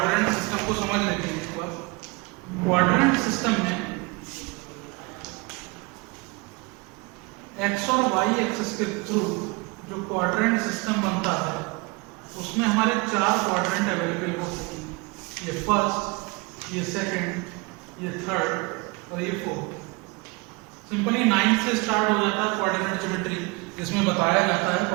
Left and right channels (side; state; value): left; quieter; 26.4 dB